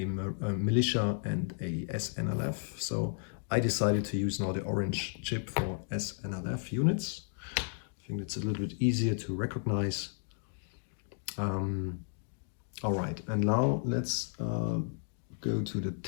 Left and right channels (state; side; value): silent; right; digital silence